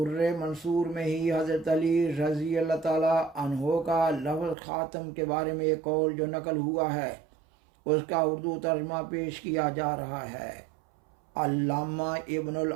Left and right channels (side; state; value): left; drops out; at 4.5 s